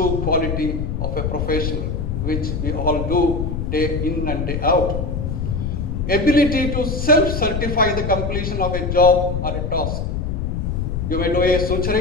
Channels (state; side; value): noise; left; rumble, 2 dB below the sound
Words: quality of a professional, which we all do day in and day out. Ability to self-certify the completion of a job or a task. You may do a